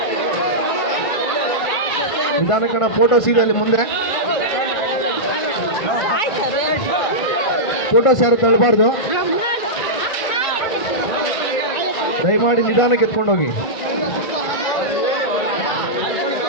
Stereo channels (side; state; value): right; late; 1.5 ms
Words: ನಿಧಾನಕ್ಕಡ ಫೋಟೋಸ್ ಇದೆ ಅಲ್ಲಿ ಮುಂದೆ. ಫೋಟೋಸ್ ಯಾರು ತಳ್ಳಬಾರ್ದು, ದಯಮಾಡಿ ನಿಧಾನಕ್ಕೆ ಎತ್ಕೊಂಡು ಹೋಗಿ.